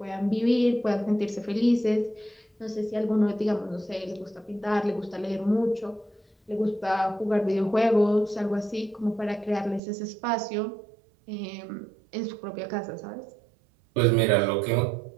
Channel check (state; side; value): drops out; left; at 9.8 s